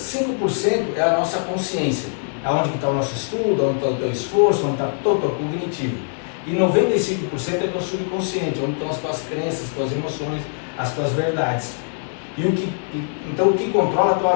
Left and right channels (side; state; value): right; silent; digital silence